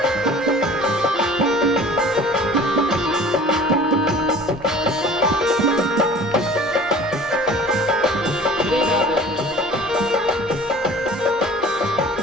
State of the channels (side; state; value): both; normal; correlation 0.45